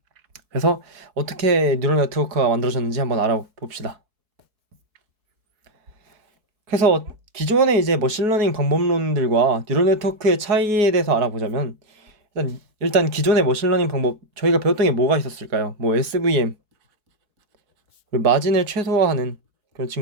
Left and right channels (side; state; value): left; late; 4.7 ms